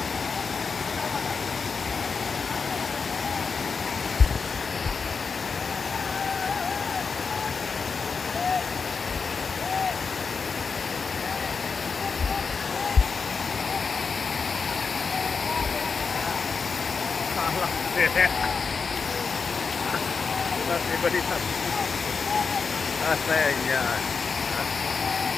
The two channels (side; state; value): right; quieter; 5.2 dB